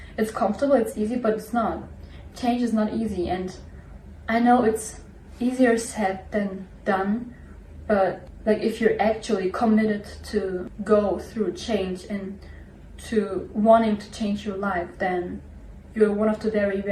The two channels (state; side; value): identical; both; correlation 1.00